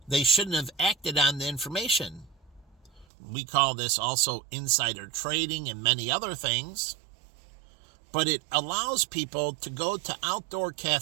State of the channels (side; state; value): left; drops out; at 3.1 s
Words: they shouldn't have acted on the information. We call this also insider trading and many other things. But it allows people to go to outdoor